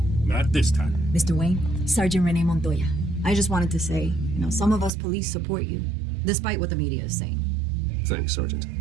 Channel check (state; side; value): drops out; left; at 4.9 s